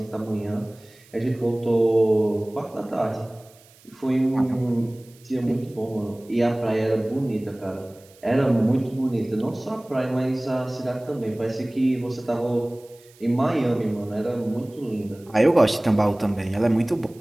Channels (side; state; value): right; noise; hiss, 27 dB below the sound